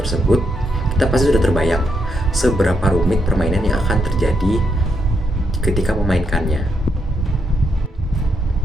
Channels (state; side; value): normal; both; correlation 0.79